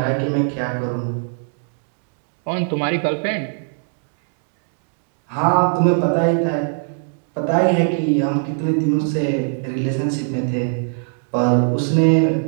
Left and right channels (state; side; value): silent; left; digital silence